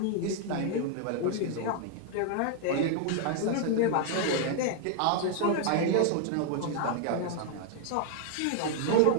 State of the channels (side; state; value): both; different; correlation 0.00